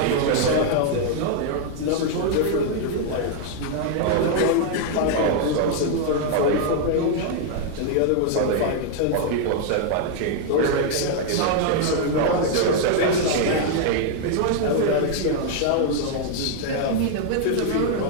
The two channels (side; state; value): both; different; correlation 0.00